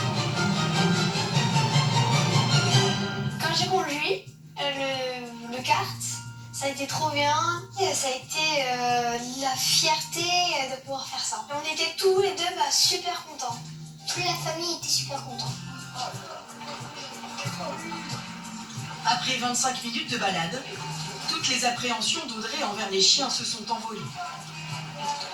Quand j'ai conduit le kart, ça a été trop bien. Et ça a été la fierté de pouvoir faire ça. Et on était tous les deux super contents. Toute la famille était super contente. Après 25 minutes de balade, toutes les appréhensions d'Audrey envers les chiens se sont envolées.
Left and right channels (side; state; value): both; identical; correlation 1.00